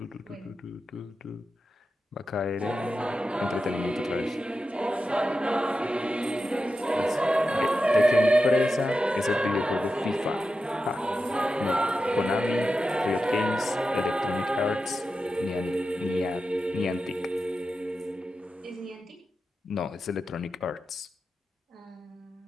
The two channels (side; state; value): both; normal; correlation 0.90